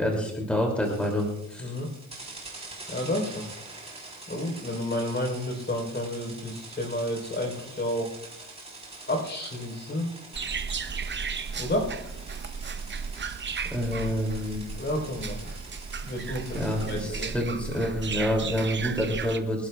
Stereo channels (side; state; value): left; noise; hiss, 27 dB below the sound